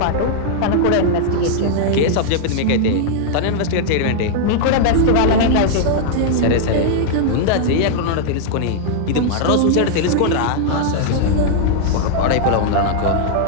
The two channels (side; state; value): both; different; correlation -0.01